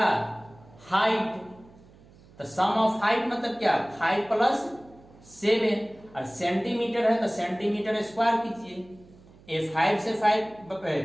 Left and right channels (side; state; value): right; noise; hum, 25 dB below the sound